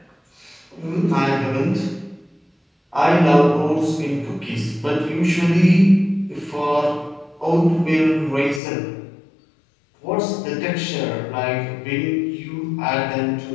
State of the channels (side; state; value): right; drops out; at 8.6 s